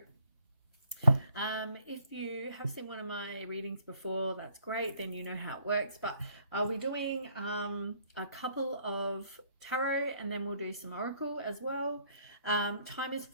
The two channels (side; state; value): both; inverted; correlation -0.64